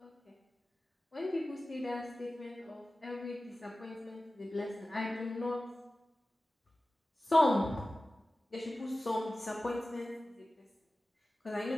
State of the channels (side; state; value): both; normal; correlation 0.96